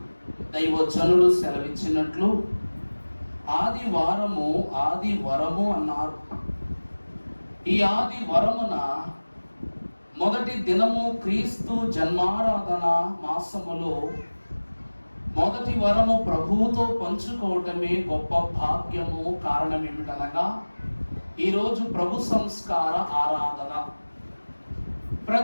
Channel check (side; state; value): both; inverted; correlation -1.00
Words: దైవజనులు సెలవిచ్చినట్లు ఆదివరము అన్నారు. ఈ ఆదివరమున మొదటి దినము క్రీస్తు జన్మారాధన మాసములో మొదటి వరము ప్రభువుతో పంచుకోవటమే గొప్ప భాగ్యము. కారణం ఏమిటనగా ఈరోజు ప్రభు సంస్కార ఆరాధన.